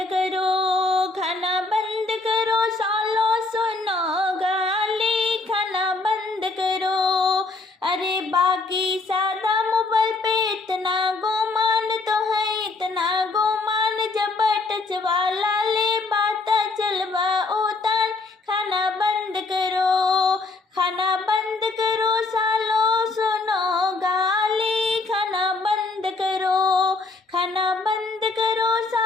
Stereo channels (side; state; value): right; quieter; 3.6 dB